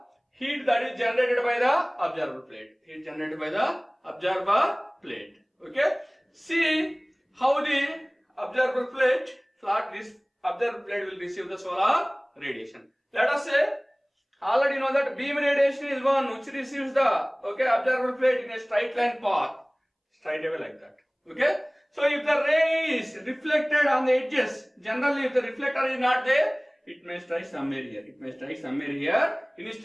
heat that is generated by the observer plate. Okay. See how the observer plate, this observer plate will receive the solar radiation. Let us say, already know that beam radiation is one which receives the observer plate in a straight line path, straight away like that. Okay. So if the ray is reflected on the edges, generally if the reflector is not there, it may strike somewhere here.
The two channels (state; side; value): identical; both; correlation 1.00